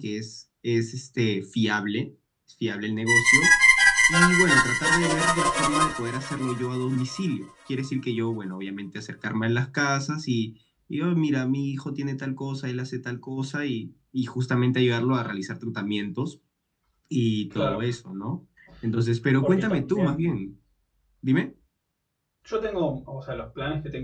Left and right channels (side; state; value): both; identical; correlation 1.00